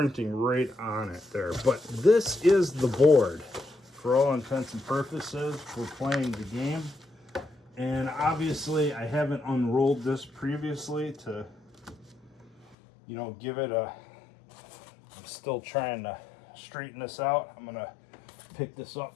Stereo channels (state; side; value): drops out; right; at 12.8 s